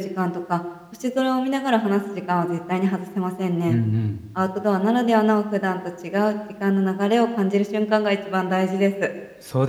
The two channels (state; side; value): identical; both; correlation 1.00